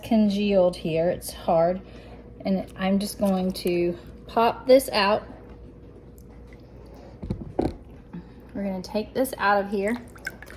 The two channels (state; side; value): identical; both; correlation 1.00